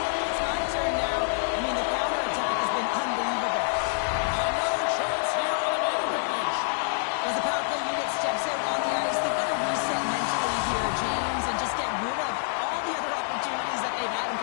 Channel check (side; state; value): right; silent; digital silence